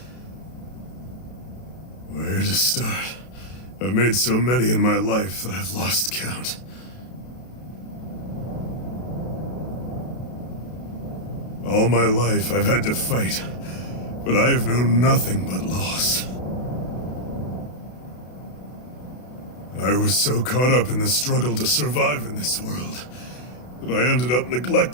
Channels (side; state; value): right; late; 32 ms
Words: Where to start? I've made so many in my life that I've lost count. All my life I've had to fight, but I have known nothing but loss. I was so caught up in the struggle to survive in this world that I ended up